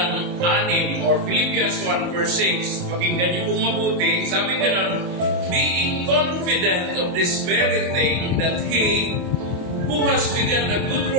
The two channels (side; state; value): left; late; 28 ms